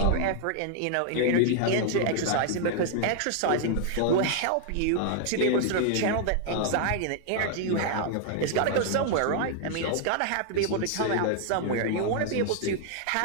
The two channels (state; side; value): different; both; correlation 0.00